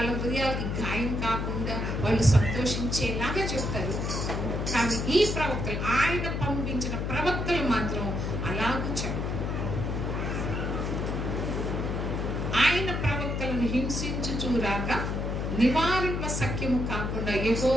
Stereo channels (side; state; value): left; noise; hum, 2 dB below the sound